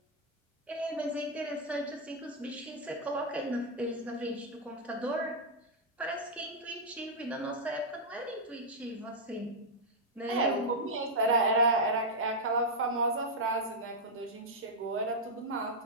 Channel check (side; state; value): both; normal; correlation -0.03